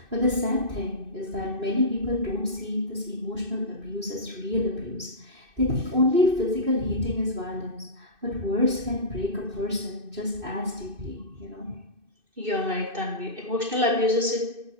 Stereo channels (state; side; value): late; left; 2.6 ms